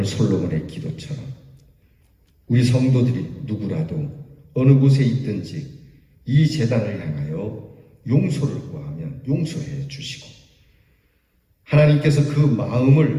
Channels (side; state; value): both; identical; correlation 1.00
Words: 솔로몬의 기도처럼 우리 성도들이 누구라도 어느 곳에 있든지 이 제단을 향하여 용서를 구하면 용서해 주시고 하나님께서 그